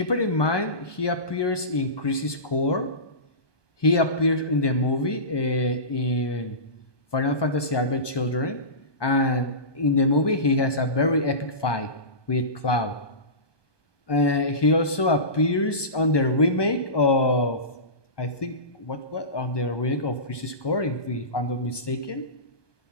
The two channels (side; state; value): right; late; 1.2 ms